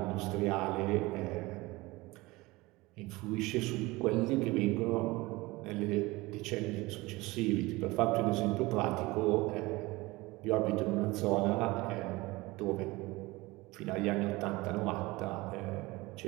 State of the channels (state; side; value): quieter; left; 21.5 dB